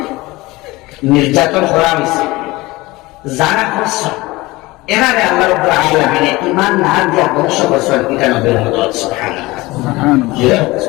নির্যাতন করা হয়েছে, যারা করছে এরারে আল্লাহ রাব্বুল আলামিন ঈমান না দিয়া ধ্বংস করছেন, এটা নবীর মদত সুবহানাল্লাহ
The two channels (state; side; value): quieter; right; 20.8 dB